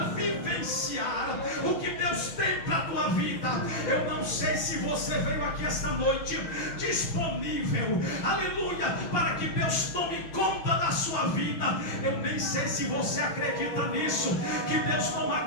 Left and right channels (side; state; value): right; late; 6.2 ms